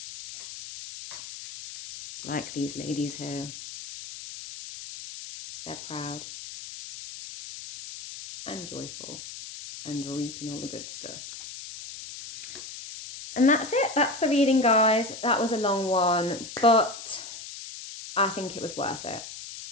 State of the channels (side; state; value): left; noise; hiss, 11 dB below the sound